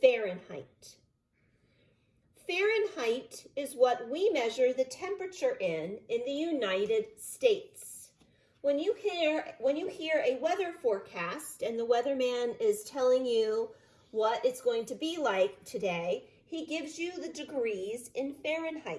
Fahrenheit. Fahrenheit is what we measure the temperature in the United States. When you hear a weather forecast and the weatherman is telling you what it's going to be like today, he gives you the degrees in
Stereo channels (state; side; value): identical; both; correlation 1.00